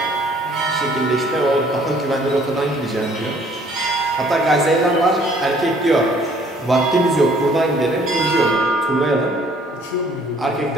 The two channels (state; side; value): normal; both; correlation 0.59